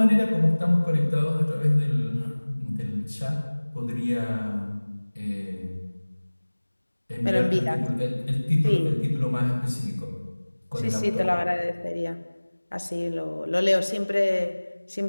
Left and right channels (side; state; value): both; inverted; correlation -1.00